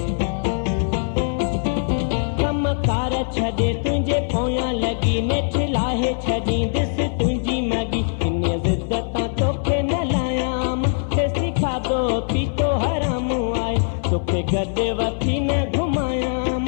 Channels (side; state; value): right; silent; digital silence